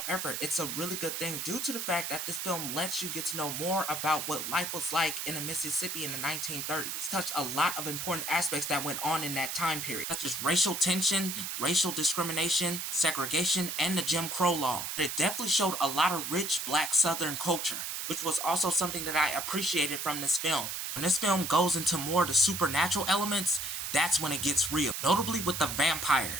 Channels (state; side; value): noise; right; hiss, 4 dB below the sound